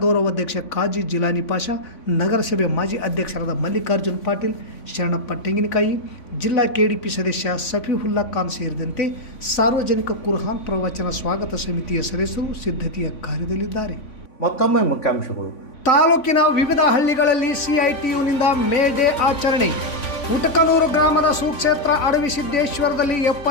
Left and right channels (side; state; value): right; late; 3.5 ms